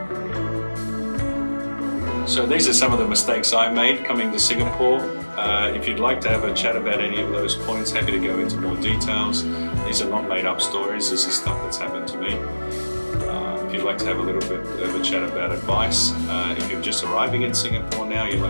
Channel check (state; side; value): inverted; both; correlation -1.00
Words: So these are some of the mistakes I made coming to Singapore. If you'd like to have a chat about any of those points, happy to go into more details. These are not made up stories, this is stuff that's happened to me. If you'd like to have a little bit of a chat about advice, if you're just arriving in Singapore now, you'd